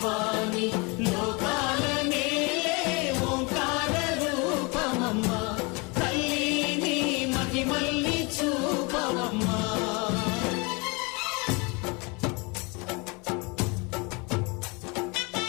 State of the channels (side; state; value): right; quieter; 28.9 dB